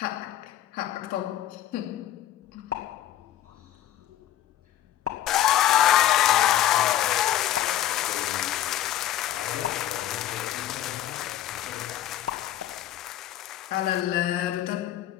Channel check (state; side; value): quieter; right; 12.6 dB